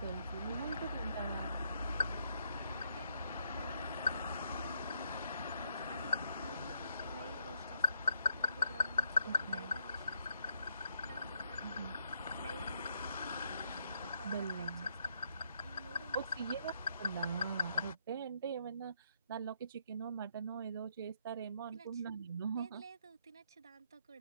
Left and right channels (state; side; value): inverted; both; correlation -0.75